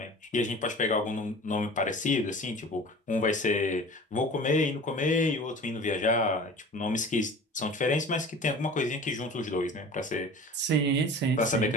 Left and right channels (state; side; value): normal; both; correlation 0.40